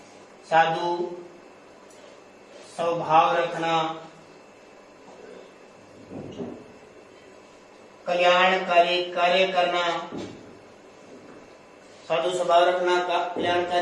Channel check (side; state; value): both; identical; correlation 1.00